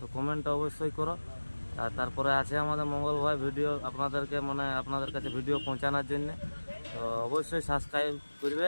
কমেন্টটা অবশ্যই করো। আর তারপরে আছে আমাদের মঙ্গল ভাই ভিডিও আপনাদেরকে, মানে আপনাদের কাছে ভিডিও পৌঁছানোর জন্য। তো অবশ্যই সাবস্ক্রাইব করবে,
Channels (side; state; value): both; inverted; correlation -1.00